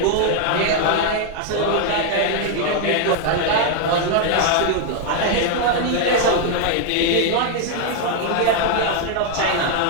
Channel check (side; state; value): both; different; correlation 0.00